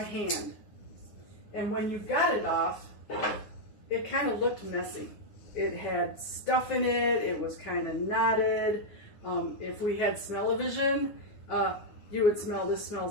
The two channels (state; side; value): late; right; 9.7 ms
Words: hand. And when you got it off, it kind of looked messy. It had stuff in it, it was kind of knotted. If we had smell-o-vision, you would smell, this